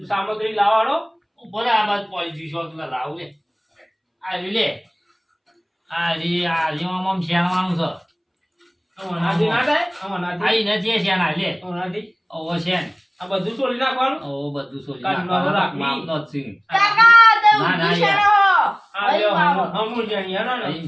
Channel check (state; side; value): identical; both; correlation 1.00